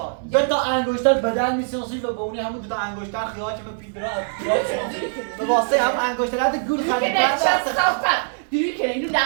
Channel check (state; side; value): silent; left; 64 dB below the other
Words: دو تا انگشتر بدن میسازی و به اونی همون دو تا انگشتر خیال که به پیدرا به واسه هم انگشتر هد گول دیگه خرید نه چه صافت دیگه کنه اینو